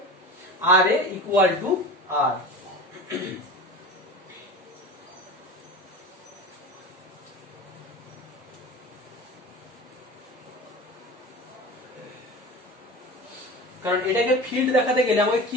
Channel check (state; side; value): normal; both; correlation 0.33